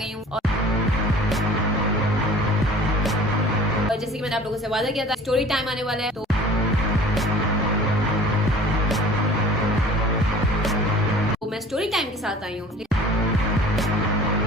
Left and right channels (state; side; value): normal; both; correlation 0.46